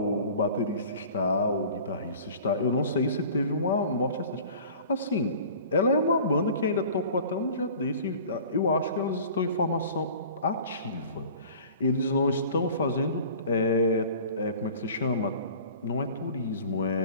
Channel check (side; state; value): both; inverted; correlation -0.44